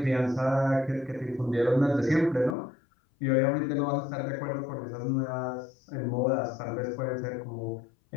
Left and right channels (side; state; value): right; drops out; at 2.6 s